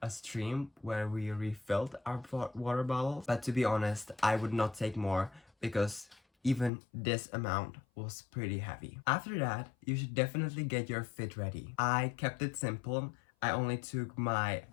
a stream where we refilled our water bottles. But to be honest, I would not take more because even this amount was pretty heavy. After that, you should definitely get your fit ready. I kept it simple. I only took my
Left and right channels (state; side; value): drops out; right; at 6.7 s